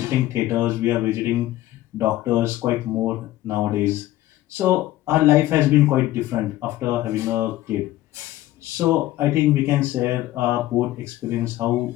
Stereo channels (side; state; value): right; quieter; 15.3 dB